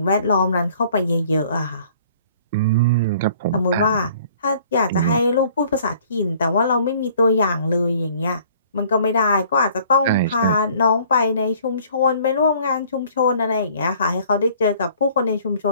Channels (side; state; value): both; inverted; correlation -0.56